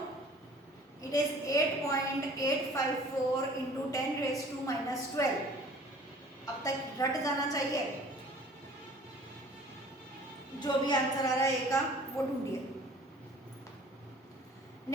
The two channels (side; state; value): both; normal; correlation 0.50